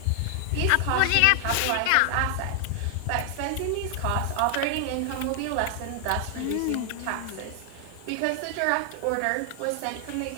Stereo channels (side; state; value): both; different; correlation 0.00